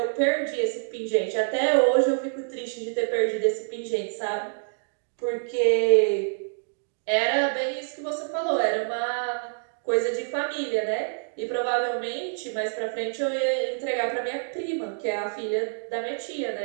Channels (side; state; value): left; silent; digital silence